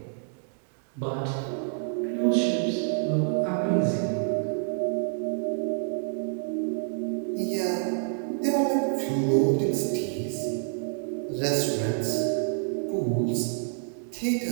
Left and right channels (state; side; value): silent; left; 60 dB below the other